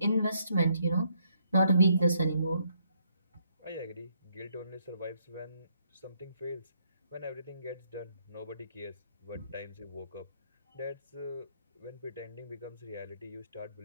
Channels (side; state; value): both; inverted; correlation -0.72